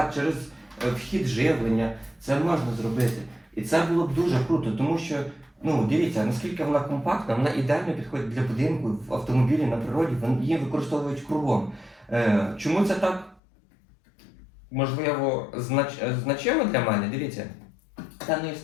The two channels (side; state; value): right; drops out; at 13.4 s